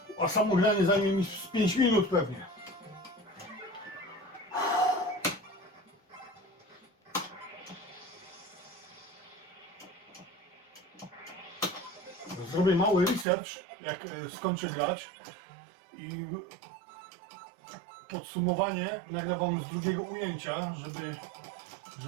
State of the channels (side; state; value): left; drops out; at 13.2 s